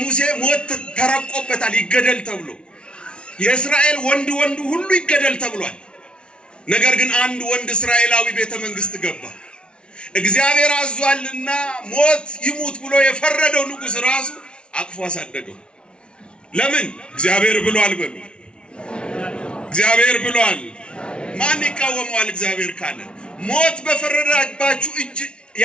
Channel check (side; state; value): right; late; 0.057 ms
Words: ሞት ተረቆበታል ይገደል ተብሎ የእስራኤል ወንድ ሁሉ ይገደል ተብሏል ነገር ግን አንድ ወንድ እስራኤላዊ ቤተ መንግስት ገባ እግዚአብሔር አዟልና ሞት ይሙት ብሎ የፈረደው ንጉስ ራሱ አቅፎ አሳደገው ለምን እግዚአብሔር ብሏል በሉ እግዚአብሔር ብሏል ማን ይቃወማል እግዚአብሔር ካለ ሞት በፈረደባችሁ እጅ